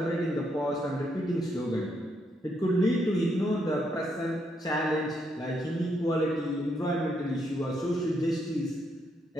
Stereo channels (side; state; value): both; normal; correlation 0.77